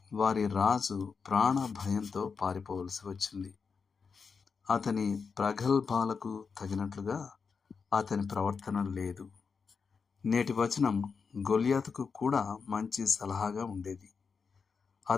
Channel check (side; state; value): right; quieter; 5.5 dB